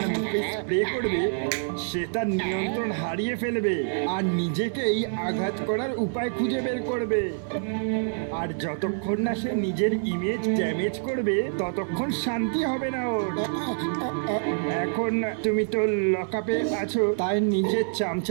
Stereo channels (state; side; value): silent; left; digital silence